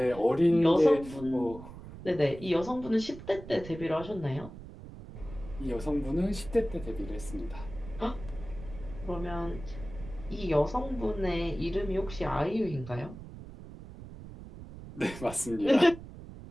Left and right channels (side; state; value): right; noise; rumble, 14 dB below the sound